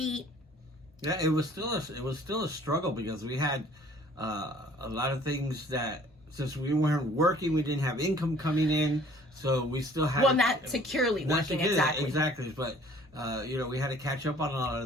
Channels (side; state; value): both; normal; correlation 0.54